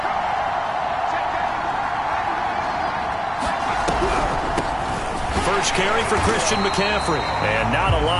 First carry for Christian McCaffrey. And not a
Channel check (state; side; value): identical; both; correlation 1.00